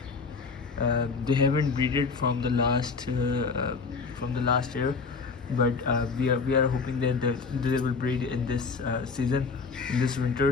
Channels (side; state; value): right; quieter; 4.8 dB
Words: They haven't breeded from the last year, but we are hoping that they will breed in this season, in this